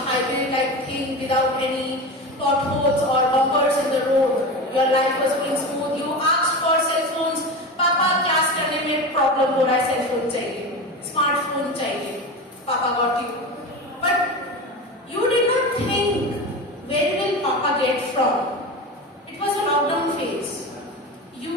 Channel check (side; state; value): both; normal; correlation 0.26